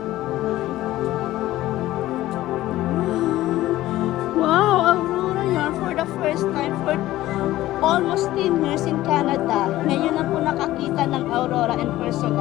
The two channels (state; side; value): quieter; right; 15.6 dB